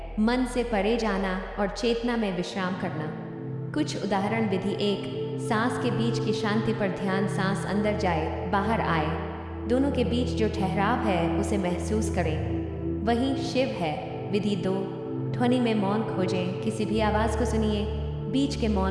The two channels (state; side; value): identical; both; correlation 1.00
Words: मन से परे जाना और चेतना में विश्राम करना। कुछ उदाहरण विधि 1, सांस के बीच की शांति पर ध्यान। सांस अंदर जाए, बाहर आए, दोनों के बीच जो ठहराव है उसे महसूस करें, वही शिव है। विधि 2, ध्वनि में मौन खोजें। किसी भी आवाज़ को सुनिए, बीच के